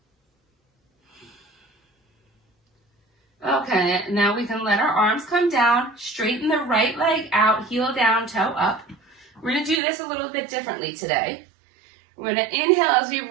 Okay, now we can let our arms come down, straighten the right leg out, heel down, toe up. We're going to do this a little bit differently today. We're going to inhale as we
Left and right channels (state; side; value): drops out; left; at 9.8 s